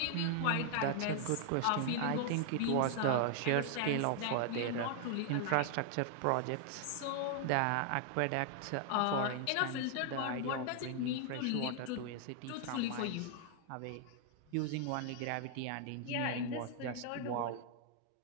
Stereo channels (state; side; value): different; both; correlation 0.00